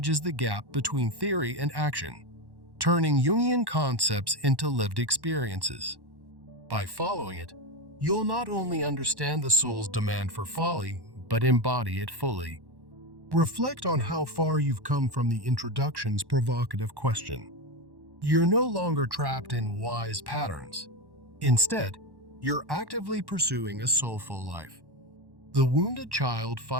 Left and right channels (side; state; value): left; late; 1.1 ms